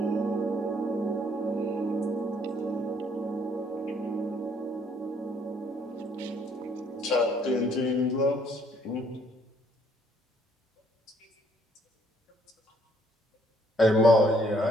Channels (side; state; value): both; normal; correlation 0.66